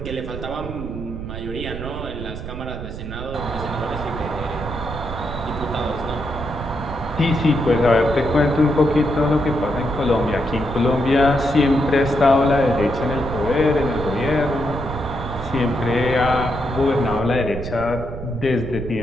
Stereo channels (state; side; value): noise; right; rumble, 8 dB below the sound